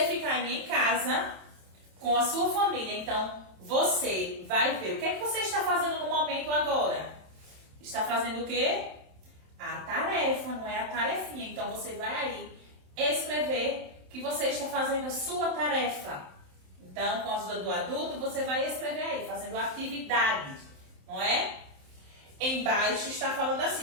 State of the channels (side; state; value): left; late; 27 ms